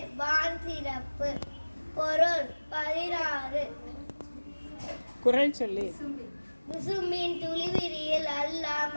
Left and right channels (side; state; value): both; inverted; correlation -1.00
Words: வான் சிறப்பு. பொருள் 16. குறள் சொல்லி. விசும்பின் துளிவிரியில் அல்ல